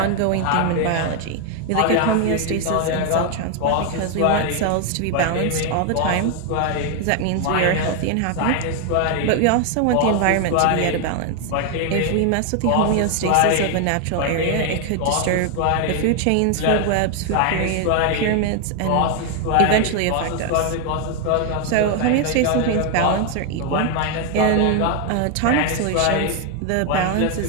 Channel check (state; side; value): different; both; correlation 0.01